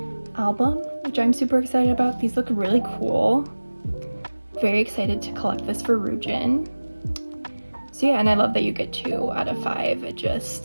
album, which I'm super excited about. These look really cool. Very excited to collect this for Ryujin. So yeah, and I love that you get 2 out of 5. I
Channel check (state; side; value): inverted; both; correlation -1.00